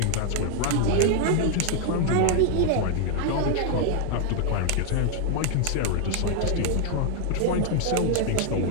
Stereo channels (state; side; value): different; both; correlation 0.00